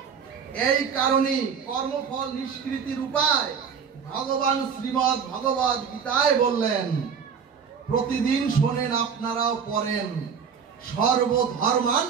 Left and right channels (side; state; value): left; quieter; 6.6 dB